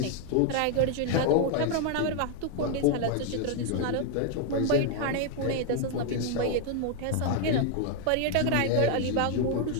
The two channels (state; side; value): different; both; correlation 0.00